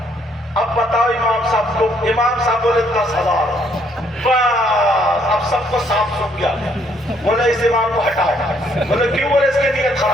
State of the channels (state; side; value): normal; both; correlation 0.68